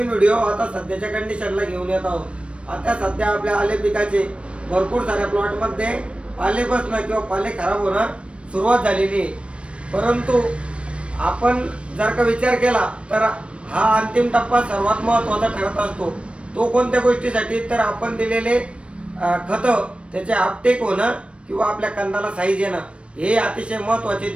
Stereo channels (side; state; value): left; late; 0.059 ms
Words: व्हिडिओ आता सध्याच्या कंडिशनला घेऊन येत आहोत। आता सध्या आपल्या आले पिकाचे भरपूर साऱ्या प्लॉट मध्ये पाले बसणं किंवा पाले खराब होणं सुरुवात झालेली आहे, परंतु आपण जर का विचार केला तर हा अंतिम टप्पा सर्वात महत्त्वाचा ठरत असतो। तो कोणत्या गोष्टीसाठी तर आपण दिलेले खत त्याचे अपटेक होणं किंवा आपल्या कंदाला साईज येणं हे अतिशय महत्त्वाचे